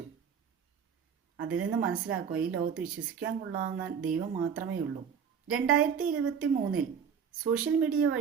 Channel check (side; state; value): left; quieter; 7.1 dB